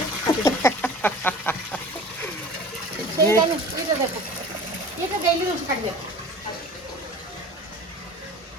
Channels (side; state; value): both; normal; correlation 0.42